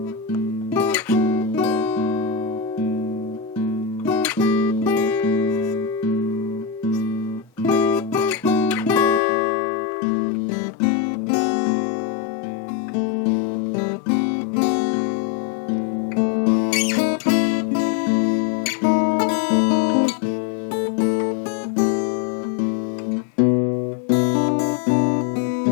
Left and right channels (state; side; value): drops out; right; at 9.2 s